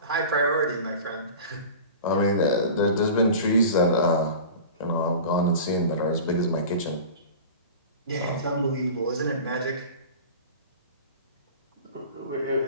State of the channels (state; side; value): inverted; both; correlation -0.36